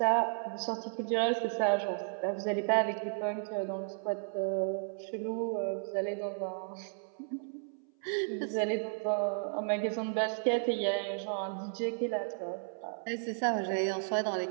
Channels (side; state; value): left; silent; 55 dB below the other